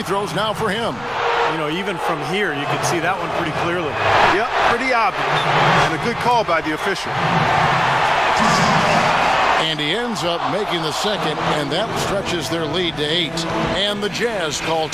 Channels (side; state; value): right; noise; rumble, 22 dB below the sound